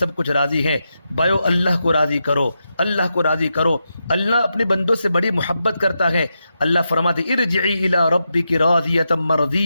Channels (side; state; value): both; inverted; correlation -0.87